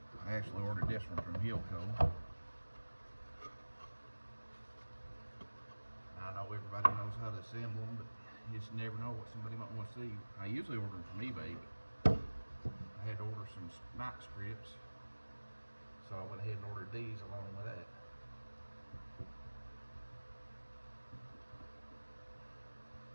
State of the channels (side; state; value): both; inverted; correlation -1.00